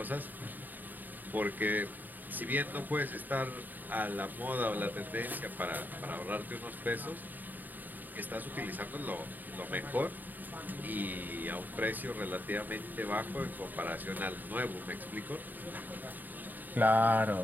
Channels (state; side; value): late; left; 0.087 ms